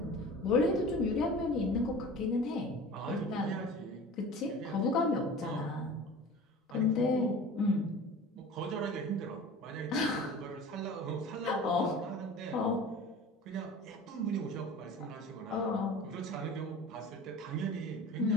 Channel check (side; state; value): both; normal; correlation 0.39